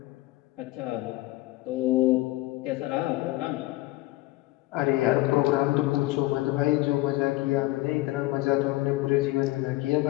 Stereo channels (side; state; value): right; quieter; 18.8 dB